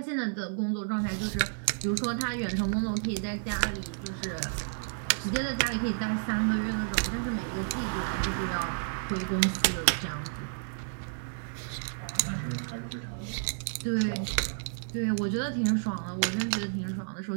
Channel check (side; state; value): left; silent; digital silence